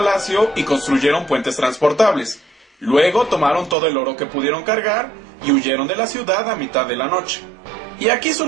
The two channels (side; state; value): left; drops out; at 3.8 s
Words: y construyeron puentes transportables. Luego tomaron todo el oro que pudieron cargar y huyeron de la ciudad a mitad de la noche. Y aquí